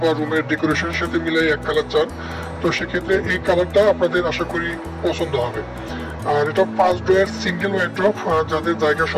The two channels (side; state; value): both; identical; correlation 1.00